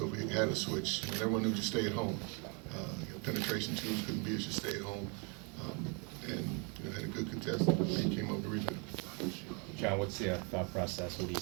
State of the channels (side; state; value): left; quieter; 34.1 dB